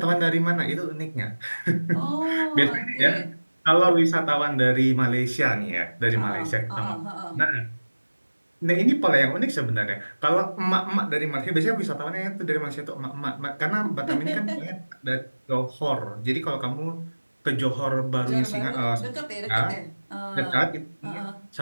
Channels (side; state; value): both; inverted; correlation -1.00